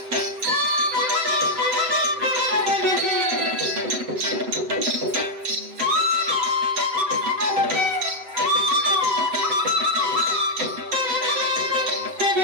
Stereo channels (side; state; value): left; late; 7.8 ms